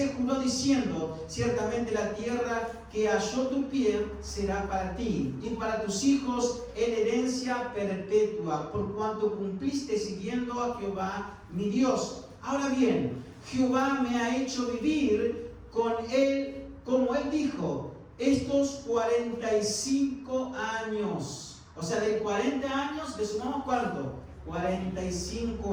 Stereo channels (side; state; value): both; identical; correlation 1.00